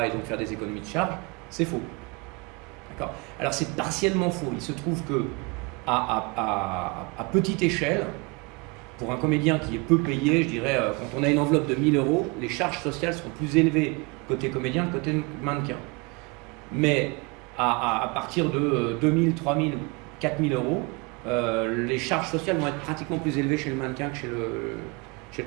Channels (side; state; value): left; quieter; 27.5 dB